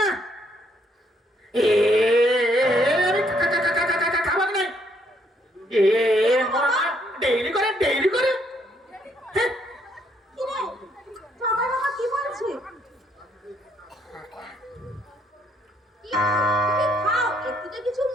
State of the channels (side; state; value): both; normal; correlation 0.70